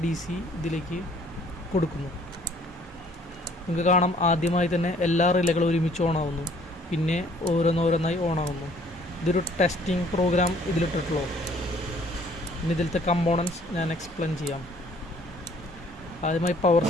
DC ഇതിലേക്ക് കൊടുക്കുന്നു. നിങ്ങൾക്ക് കാണാം, ആദ്യമായി തന്നെ എല്ലാ റിലേകളും ഒരുമിച്ച് ഓണാവുന്നു, പിന്നെ ഓരോന്നോരോന്നായി ഓണാവുന്നു. ഇതൊരു ടെസ്റ്റിംഗ് പ്രോഗ്രാം ഇതിലിട്ടിട്ടുള്ളൂ. പിന്നെ ഇതിലത്തെ കമ്പോണൻസ് ഞാൻ എക്സ്പ്ലെയിൻ ചെയ്യാം. ആദ്യമായി പവർ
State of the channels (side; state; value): both; normal; correlation 0.59